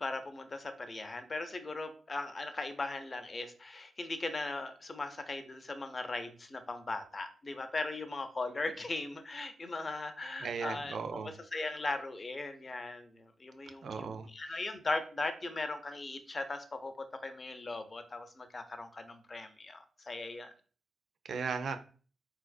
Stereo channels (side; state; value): both; normal; correlation 0.90